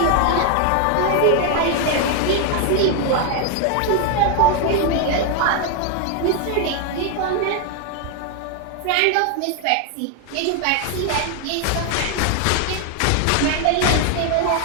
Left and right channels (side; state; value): both; different; correlation 0.00